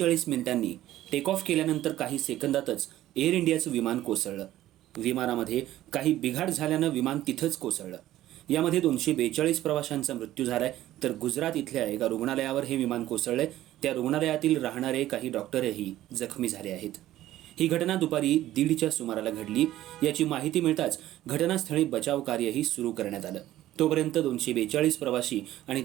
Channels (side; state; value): left; quieter; 14.2 dB